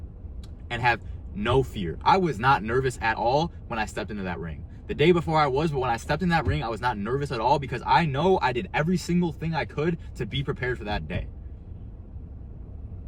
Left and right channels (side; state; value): both; identical; correlation 1.00